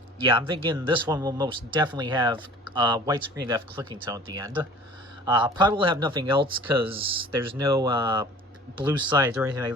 yeah, I'm thinking this one will most definitely have widescreen depth clicking tone at the end. Probably will have nothing else, because there's no blue sides or anything like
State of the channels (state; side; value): normal; both; correlation 0.46